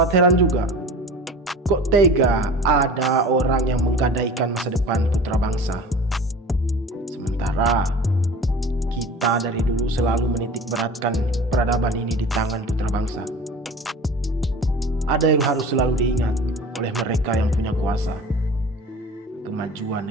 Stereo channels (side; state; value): both; normal; correlation 0.39